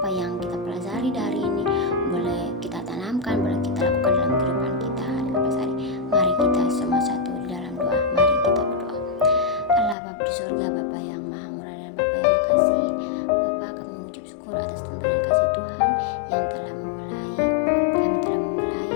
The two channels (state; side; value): drops out; right; at 10.0 s